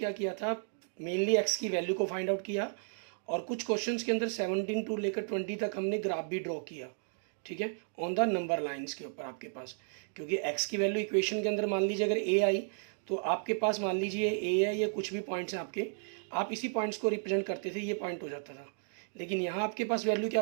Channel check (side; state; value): left; silent; digital silence